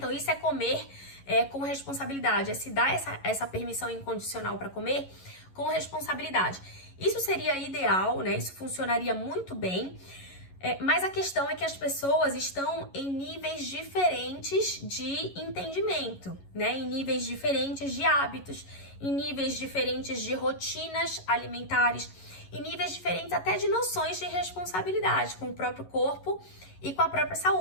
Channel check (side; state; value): right; late; 11 ms